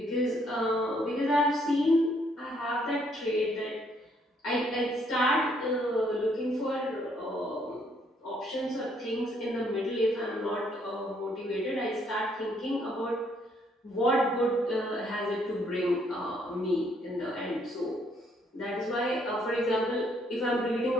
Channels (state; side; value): normal; both; correlation 0.68